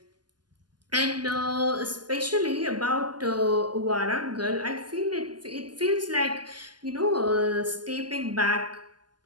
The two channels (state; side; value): late; left; 0.70 ms